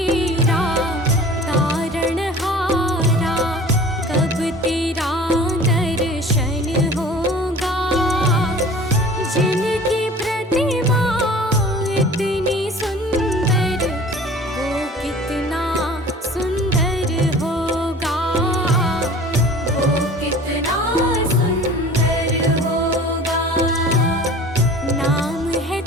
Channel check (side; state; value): both; normal; correlation 0.44